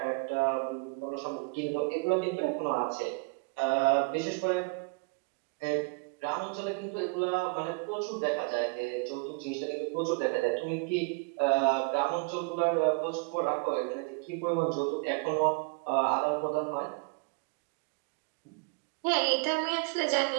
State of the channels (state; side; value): quieter; left; 31.9 dB